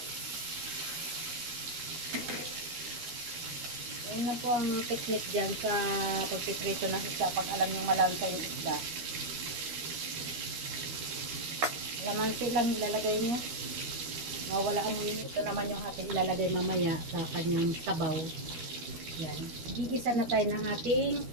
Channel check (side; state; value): left; late; 13 ms